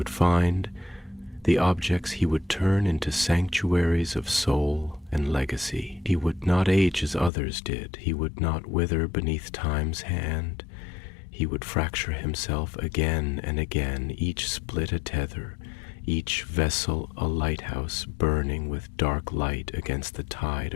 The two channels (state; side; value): drops out; right; at 7.3 s